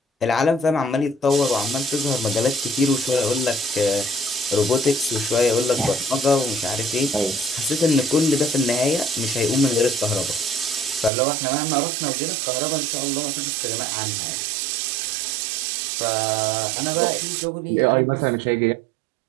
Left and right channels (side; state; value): left; drops out; at 11.1 s